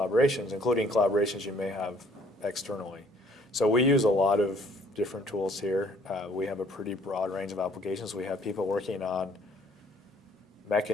including collaborations you may have externally. So we use a lot of different tools here. We have a pretty broad range of applications. We have people working on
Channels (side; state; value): both; normal; correlation 0.60